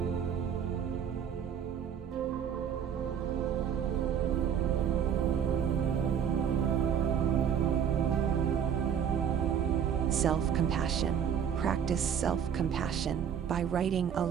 Self-compassion. Practice self-compassion by writing a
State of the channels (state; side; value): quieter; left; 8.3 dB